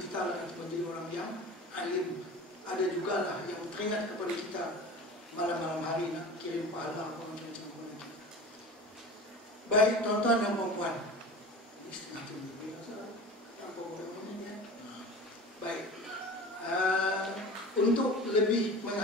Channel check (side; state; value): both; normal; correlation 0.36